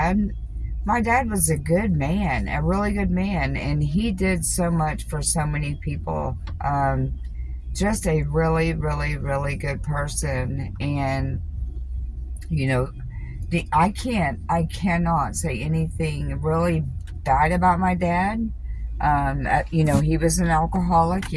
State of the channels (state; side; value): identical; both; correlation 1.00